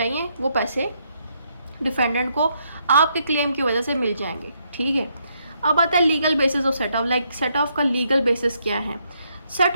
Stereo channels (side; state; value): both; inverted; correlation -0.75